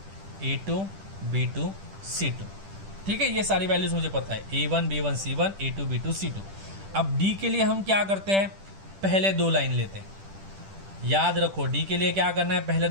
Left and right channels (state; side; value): late; left; 10 ms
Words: a2 b2 c2. ठीक है, ये सारी वैल्यूज मुझे पता है, a1 b1 c1 a2 b2 c2. अब डी के लिए हम क्या करते हैं, पहले 2 लाइन लेते हैं. याद रखो डी के लिए क्या करना है, पहले